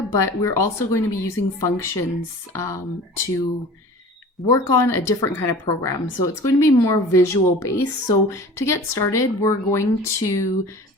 but we're also going to be using functions to work on a different kind of program. So it's going to be more visual based. So to get started, we're going to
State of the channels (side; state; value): both; normal; correlation 0.41